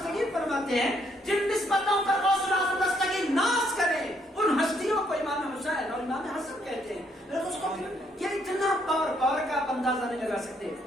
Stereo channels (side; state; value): both; normal; correlation 0.71